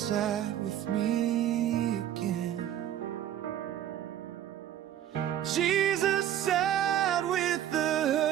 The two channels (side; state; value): left; quieter; 11.2 dB